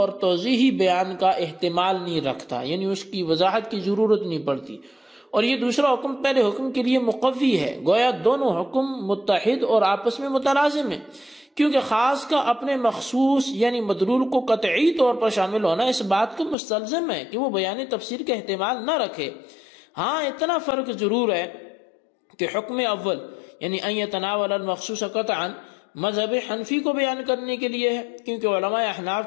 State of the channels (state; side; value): drops out; right; at 16.6 s